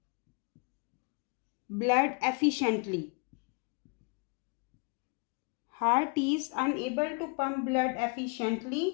blood efficiently. Heart is unable to pump blood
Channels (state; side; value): quieter; right; 34.8 dB